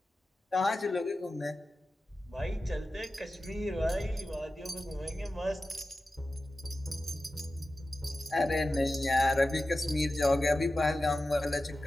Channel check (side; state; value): both; normal; correlation 0.93